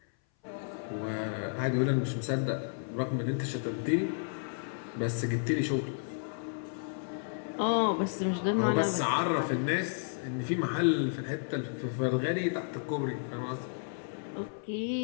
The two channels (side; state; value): right; silent; 56 dB below the other